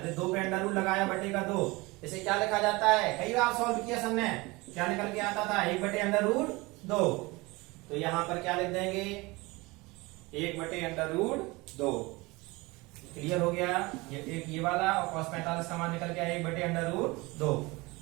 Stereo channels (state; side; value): quieter; left; 23.5 dB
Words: 2 पे अंडर रूट लगाया बटे का 2, इसे क्या लिखा जाता है, कई बार सॉल्व किया सबने, क्या निकल के आता था, 1 बटे अंडर रूट 2। तो यहां पर क्या लिख देंगे, 1 बटे अंडर रूट 2। क्लियर हो गया, ये एक ये वाला, और cos 45 का मान निकल गया 1 बटे अंडर रूट 2।